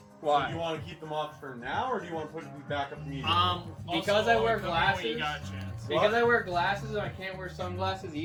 So do you want to keep them off for now, or do you want to put them back up immediately? Because I wear When you glasses. got a chance. Because I wear glasses and I can't wear sunglasses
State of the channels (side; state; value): both; identical; correlation 1.00